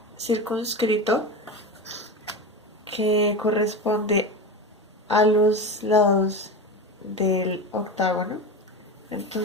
circunscrito que corresponde a los lados del octágono.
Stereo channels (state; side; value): normal; both; correlation 0.24